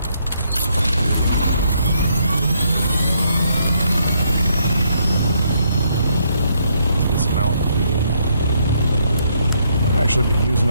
Actually be using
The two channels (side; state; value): both; inverted; correlation -0.73